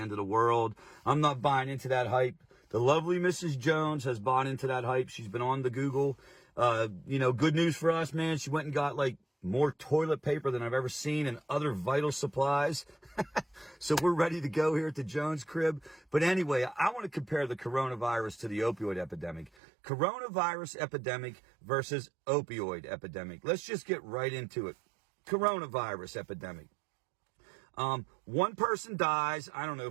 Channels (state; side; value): drops out; left; at 19.5 s